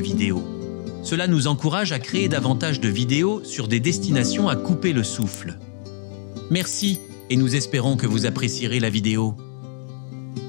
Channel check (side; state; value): right; silent; digital silence